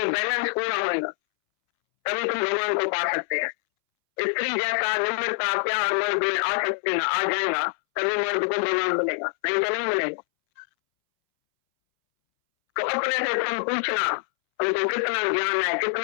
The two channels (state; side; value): silent; right; 62 dB below the other